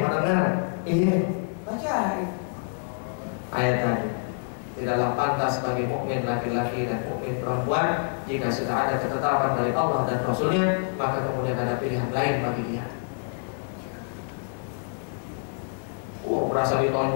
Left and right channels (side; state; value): right; silent; 60 dB below the other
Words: Iya, baca ayat tadi. Tidaklah pantas bagi mukmin laki-laki dan mukmin perempuan jika sudah ada ketetapan dari Allah dan Rasulnya, maka kemudian ada pilihan lain bagi dia. Berasa